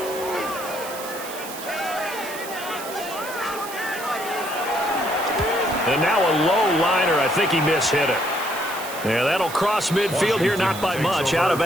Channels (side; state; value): right; noise; hiss, 12 dB below the sound